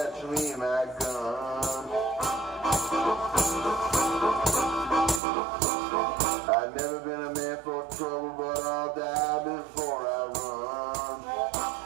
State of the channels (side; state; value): left; drops out; at 5.2 s